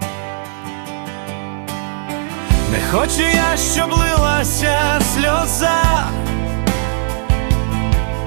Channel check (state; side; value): silent; left; 55 dB below the other